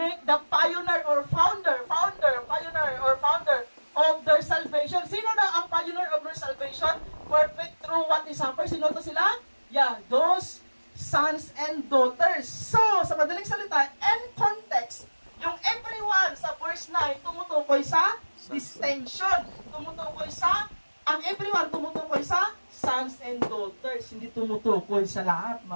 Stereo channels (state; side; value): inverted; both; correlation -1.00